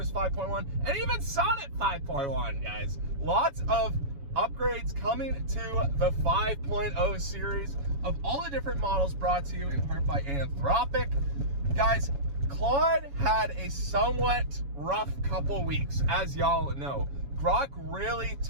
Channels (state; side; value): late; left; 7.1 ms